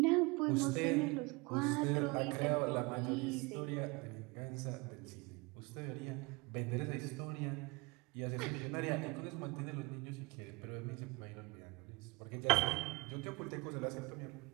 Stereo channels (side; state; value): left; quieter; 26.4 dB